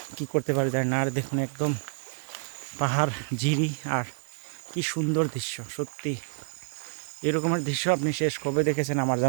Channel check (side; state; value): left; silent; 55 dB below the other